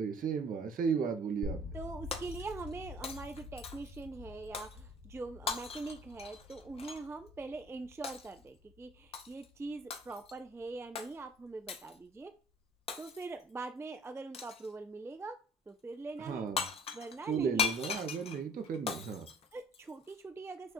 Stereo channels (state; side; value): normal; both; correlation 0.52